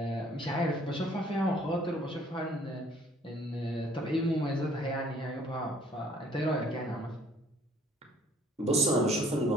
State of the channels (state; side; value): normal; both; correlation 0.58